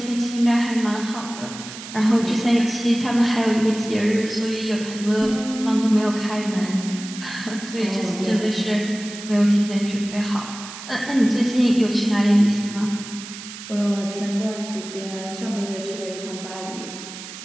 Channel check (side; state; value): right; noise; hiss, 12 dB below the sound